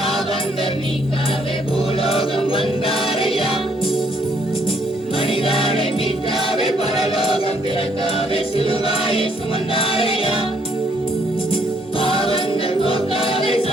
பூலோகம் வந்தாரையா மனிதனை மீட்டாவே பரலோகம் பிறக்காவே சிலுவாயை சுமந்தாரையா பாவங்கள் போக்காவே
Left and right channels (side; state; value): both; normal; correlation 0.68